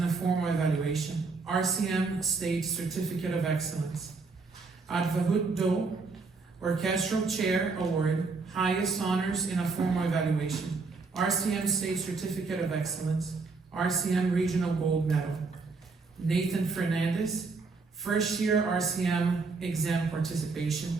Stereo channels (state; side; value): quieter; left; 4.2 dB